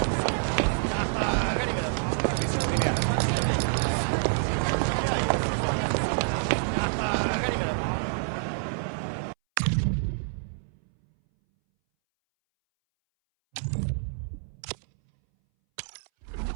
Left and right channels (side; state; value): left; silent; 60 dB below the other